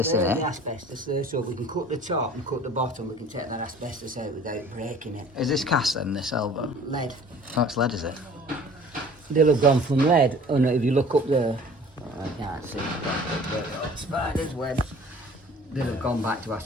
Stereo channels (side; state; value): both; normal; correlation 0.48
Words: isn't The it? asbestos there, so if we can cut the top and cut the bottom, we can take that asbestos out without breaking it. Is this cast then, this elbow? Lead. Oh, it's lead, is it? They'll have gone from lead. Oh no, if you look up there, I can't see. Spiders, webs. They'll have gone back to